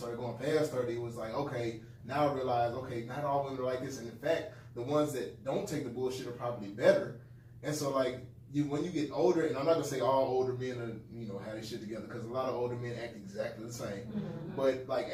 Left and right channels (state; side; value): identical; both; correlation 1.00